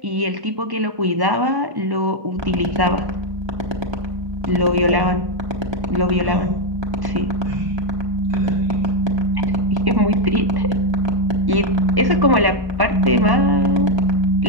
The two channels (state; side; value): late; left; 1.1 ms